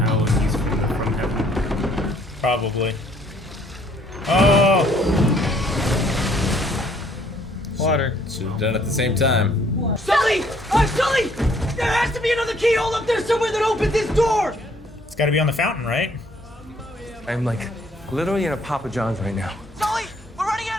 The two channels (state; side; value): normal; both; correlation 0.63